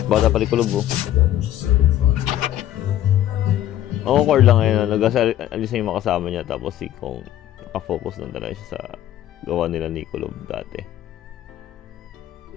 Bata pa rin Kulob o. Awkward lang ngayon, nag-alis na yung makasama niya tapos si Kong nakafocus lang talaga siya sa gawa nila ni Kulob dati.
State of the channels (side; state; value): right; quieter; 12.4 dB